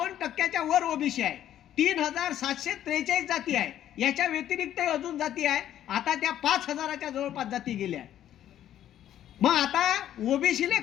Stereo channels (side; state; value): right; quieter; 11.4 dB